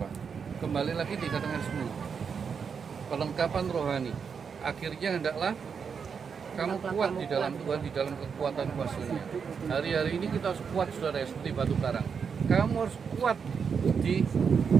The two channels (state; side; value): quieter; left; 6.3 dB